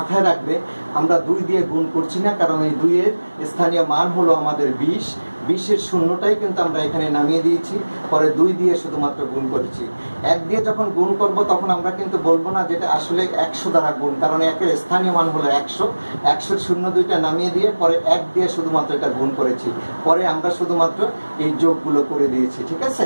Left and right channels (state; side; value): inverted; both; correlation -1.00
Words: রাখবে, আমরা 2 দিয়ে গুণ করছি না, কারণ এই 2 এর স্থানীয় মান হলো আমাদের 20। 20-এর শূন্যটাই কিন্তু আমরা এখানে নামিয়ে দিয়েছি, পরে 2 দিয়ে শুধুমাত্র গুণ করেছি। 1 দিয়ে যখন গুণ করব তখন আমরা কিন্তু বলবো না যেটা আসলে 100 দ্বারা গুণ, কারণ 1 এর স্থানীয় মান হলো 100। 100-এর শূন্য 2টা নামিয়ে দিয়ে পরে 1 দিয়ে শুধুমাত্র এটা গুণ করেছি, পরে আমরা শুধুমাত্র এই যোগগুলো করে দিয়েছি। ঠিক আছে?